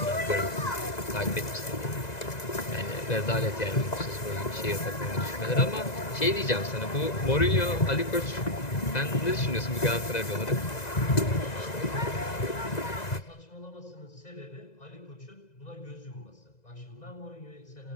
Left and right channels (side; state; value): right; late; 2.0 ms